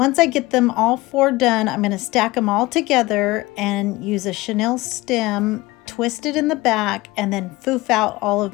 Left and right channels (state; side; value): quieter; right; 20.4 dB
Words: I get them all 4 done, I'm going to stack them all together and use a chenille stem, twist it in the back, and then foof out all